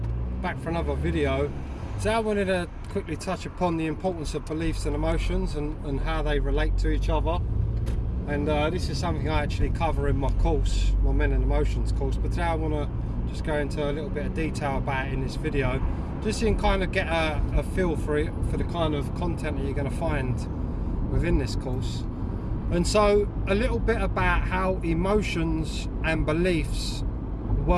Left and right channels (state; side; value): identical; both; correlation 1.00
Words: back for another video. So I wanted to quickly touch upon the importance of beliefs and emotions and how they relate to each other. And this is something I actually cover in my course, my Men and Emotions course, but today I want to just go into a little bit of detail about it in this video, just so you can kind of get a feel for it, for the kind of content that you're going to find within this course. And so a little bit about how emotions and beliefs